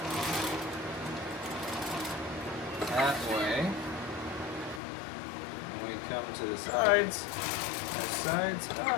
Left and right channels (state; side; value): drops out; right; at 4.8 s